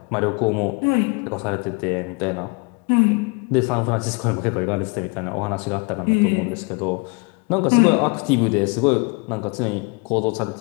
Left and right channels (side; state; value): right; quieter; 30.9 dB